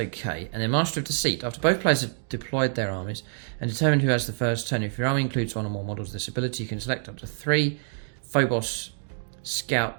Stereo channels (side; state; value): left; silent; digital silence